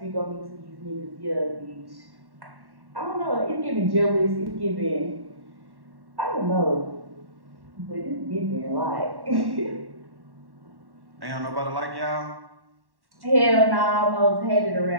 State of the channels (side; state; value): left; late; 1.1 ms